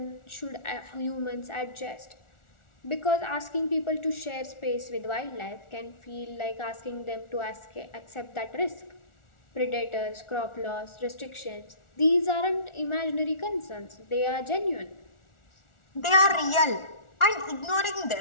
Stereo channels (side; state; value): right; late; 1.4 ms